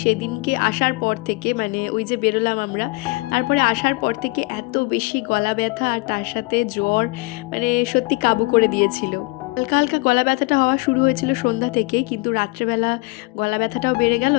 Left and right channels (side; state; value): right; quieter; 25.7 dB